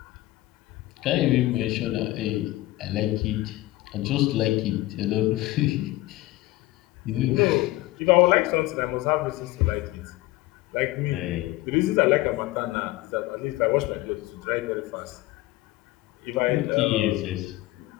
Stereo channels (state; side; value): quieter; right; 18.1 dB